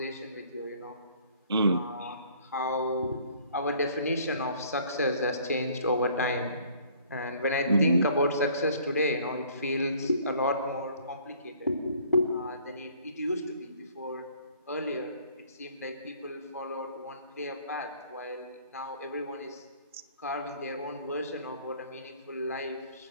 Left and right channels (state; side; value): inverted; both; correlation -0.56